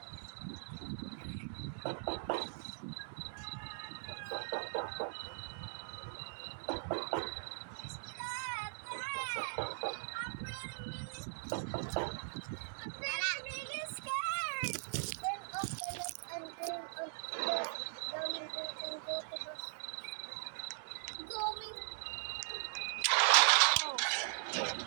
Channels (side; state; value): left; silent; digital silence